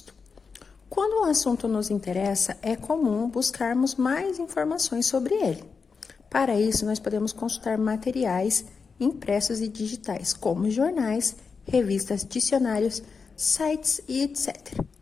Quando um assunto nos interessa, é comum buscarmos mais informações sobre ele. Para isso, nós podemos consultar materiais impressos e digitais, como jornais, revistas, dicionários, sites e etc.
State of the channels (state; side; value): quieter; right; 5.2 dB